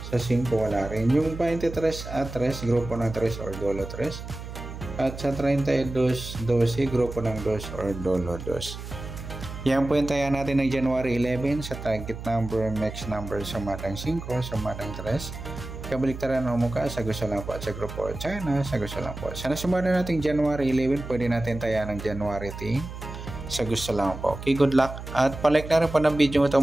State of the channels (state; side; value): noise; right; hum, 10 dB below the sound